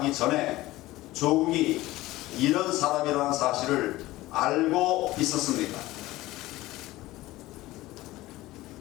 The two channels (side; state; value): right; quieter; 17.7 dB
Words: 전에 조국이 이런 사람이라는 사실을 알고 있었습니까?